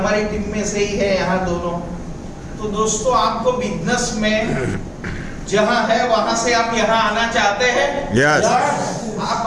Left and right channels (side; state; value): both; identical; correlation 1.00